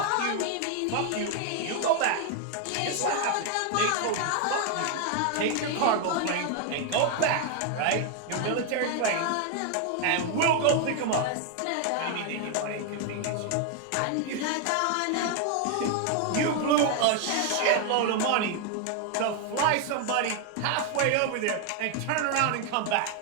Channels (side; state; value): both; different; correlation 0.00